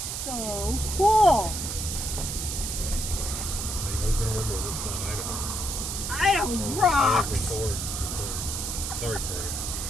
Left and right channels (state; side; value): noise; right; hiss, 4 dB below the sound